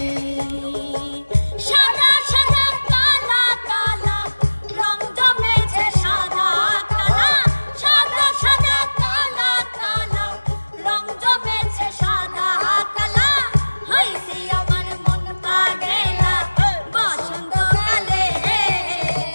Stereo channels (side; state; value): both; inverted; correlation -1.00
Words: সাদা সাদা কালা কালা রং জমেছে, সাদা কালা সাদা সাদা কালা কালা রং জমেছে, সাদা কালা হইছে আমার মন পাগেলা বসন্তকালে,